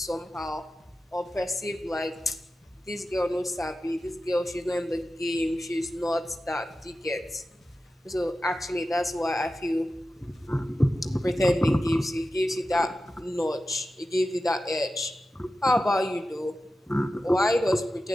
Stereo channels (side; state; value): both; normal; correlation 0.93